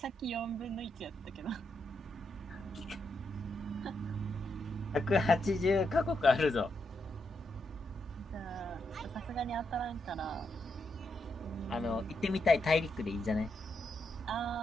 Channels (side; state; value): both; normal; correlation 0.82